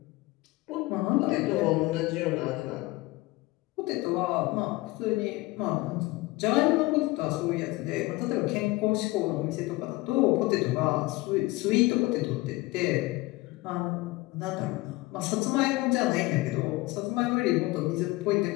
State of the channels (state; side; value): quieter; right; 20.7 dB